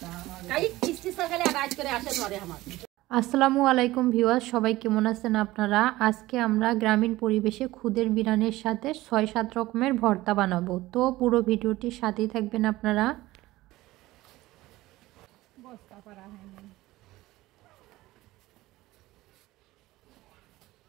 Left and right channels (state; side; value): quieter; left; 17.7 dB